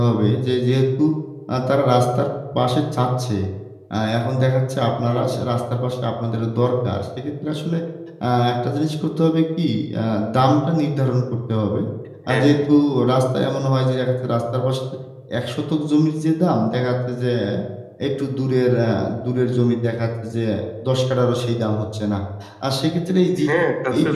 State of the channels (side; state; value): both; identical; correlation 1.00